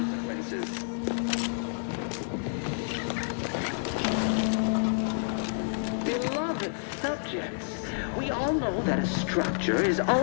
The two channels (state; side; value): silent; right; 58 dB below the other